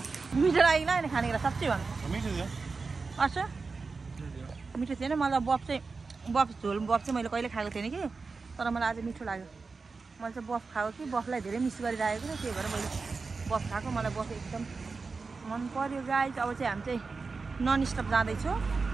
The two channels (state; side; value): quieter; left; 4.4 dB